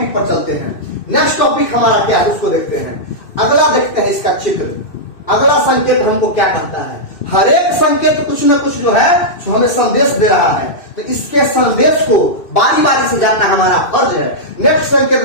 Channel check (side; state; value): right; late; 2.6 ms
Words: पर चलते हैं। नेक्स्ट टॉपिक हमारा क्या है उसको देखते हैं। अगला देखते हैं इसका चित्र। अगला संकेत हमको क्या कहता है, हर एक संकेत कुछ न कुछ जो है जो हमें संदेश दे रहा है, तो इसके संदेश को बारी बारी से जानना हमारा फर्ज है। नेक्स्ट संकेत